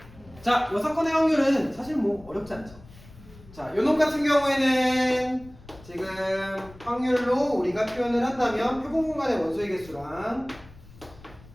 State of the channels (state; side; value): noise; left; rumble, 21 dB below the sound